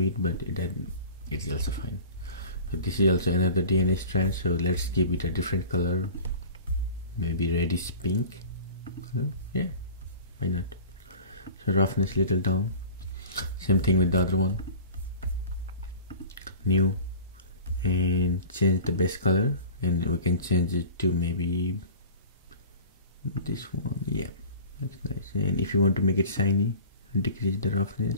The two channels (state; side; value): inverted; both; correlation -0.40